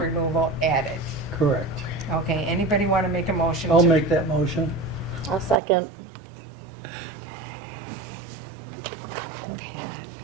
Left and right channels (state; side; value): drops out; left; at 5.6 s